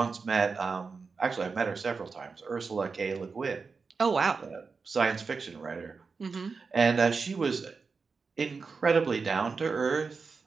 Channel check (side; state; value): left; quieter; 4.8 dB